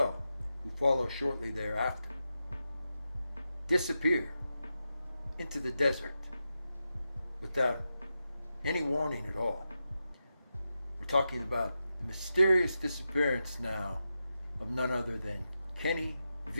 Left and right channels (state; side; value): inverted; both; correlation -0.89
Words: who follow shortly thereafter, disappear into the desert without any warning at all. We're talking about the mysterious disappearance now of none other than Kenny